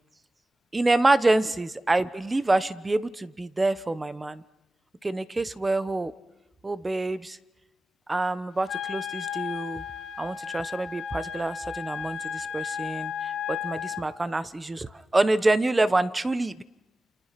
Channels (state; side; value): normal; both; correlation 0.94